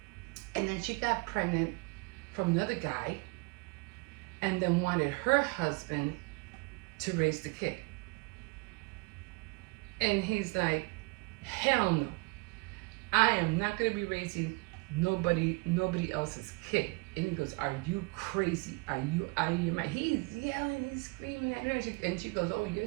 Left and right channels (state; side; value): quieter; left; 28.1 dB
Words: and then she got pregnant from another guy, and then wanted her husband to raise the kid. And he's like, hell no. I am not going to be raising nobody else's kid. And he goes, are you crazy? Are you out of your mind? He's yelling, he's screaming at her. And she goes, oh,